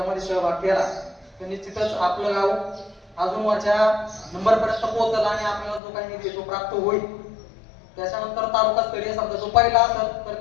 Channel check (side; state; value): right; drops out; at 5.8 s